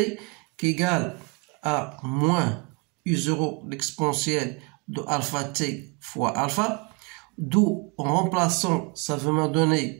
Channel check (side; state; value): left; quieter; 30.2 dB